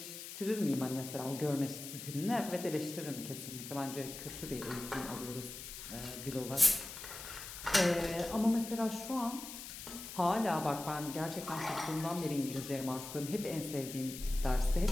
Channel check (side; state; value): left; noise; hiss, 10 dB below the sound